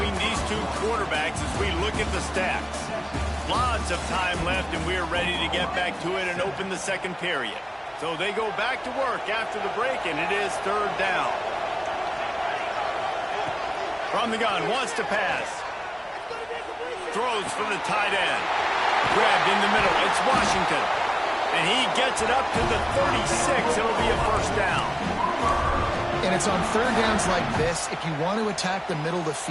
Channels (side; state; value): both; identical; correlation 1.00